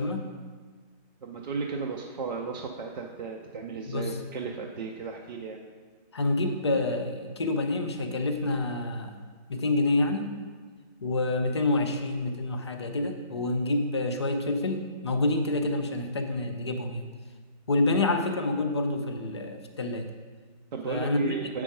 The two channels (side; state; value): both; inverted; correlation -0.57